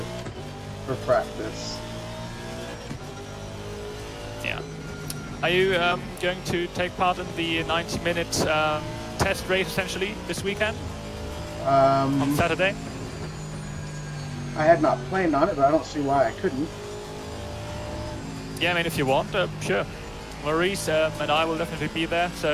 for practice. Yeah. Are you going to take part in the 90-minute test race, essentially, this weekend? On Saturday? I had not planned on it, but I don't see why I couldn't. Yeah, I mean, if you want, sure. Maurice and I will definitely be there,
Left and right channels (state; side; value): identical; both; correlation 1.00